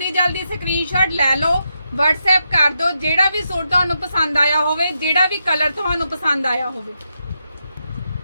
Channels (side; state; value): both; inverted; correlation -0.84